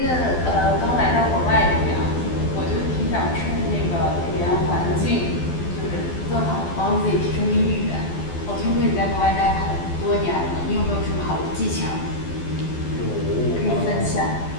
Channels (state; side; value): late; right; 12 ms